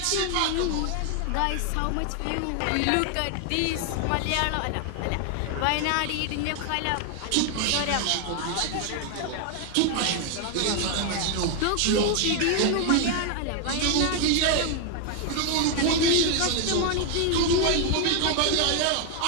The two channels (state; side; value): different; both; correlation 0.01